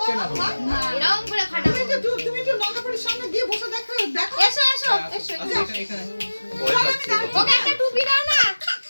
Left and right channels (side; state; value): both; inverted; correlation -1.00